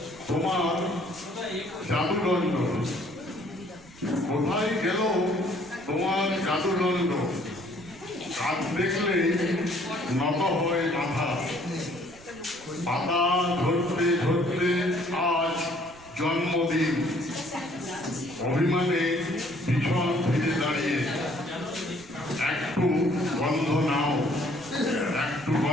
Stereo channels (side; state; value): right; noise; rumble, 23 dB below the sound